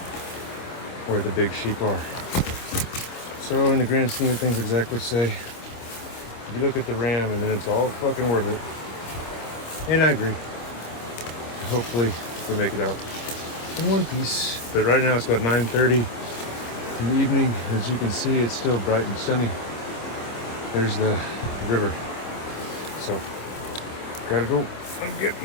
where the big sheep are. So in the grand scheme of things, exactly say You look at the RAM and then it's all fucking worth it. And I agree. Hopefully we make it out in one piece. But right now it's about 9:30 in the evening. As you can see, it's still bright and sunny. There's the river. So gotta go and get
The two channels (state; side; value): late; right; 26 ms